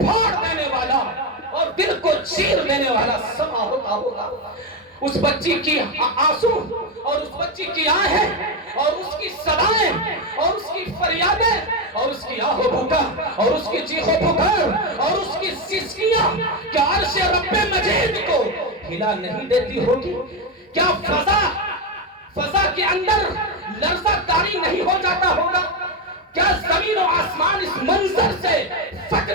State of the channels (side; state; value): both; normal; correlation 0.10